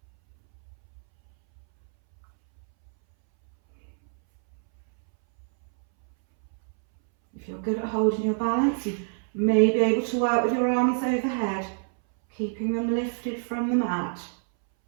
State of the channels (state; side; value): silent; left; 61 dB below the other